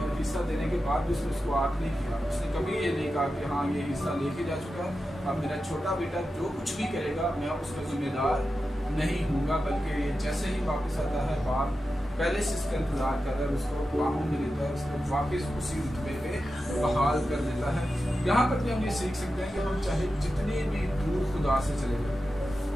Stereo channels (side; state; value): both; normal; correlation 0.91